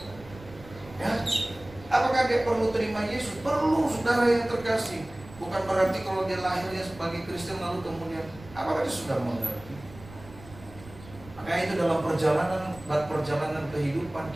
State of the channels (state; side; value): noise; right; rumble, 19 dB below the sound